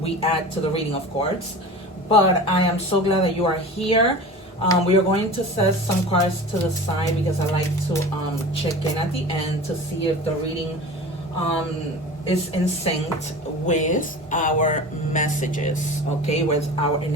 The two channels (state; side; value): normal; both; correlation 0.35